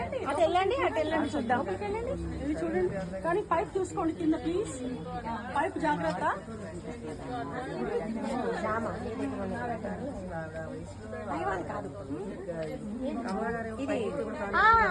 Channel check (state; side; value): identical; both; correlation 1.00